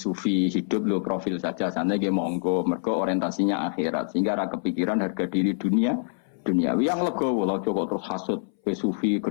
hidup low profil saja, sana dia monggo, mergo orientasinya akhirat, sehingga ada kepikiran harga diri duniawi yang legowo, lo cukup terus hasut, ke sufi,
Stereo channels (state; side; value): silent; right; 59 dB below the other